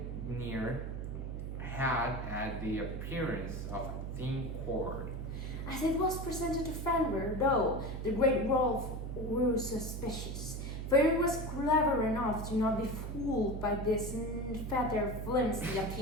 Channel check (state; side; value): noise; right; hum, 5 dB below the sound